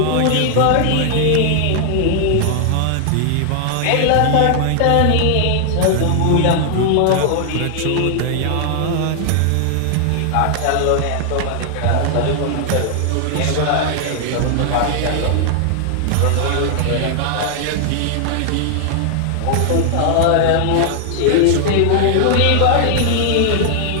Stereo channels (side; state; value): both; different; correlation 0.00